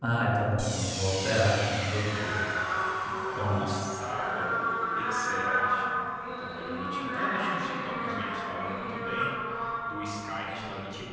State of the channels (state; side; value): identical; both; correlation 1.00